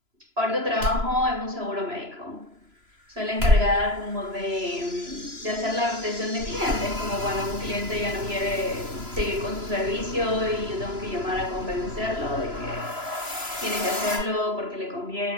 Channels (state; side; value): late; left; 3.0 ms